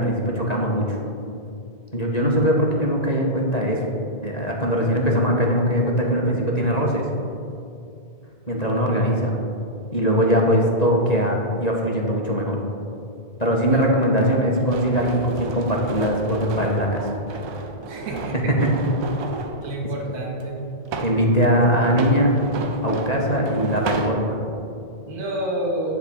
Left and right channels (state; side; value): late; right; 1.9 ms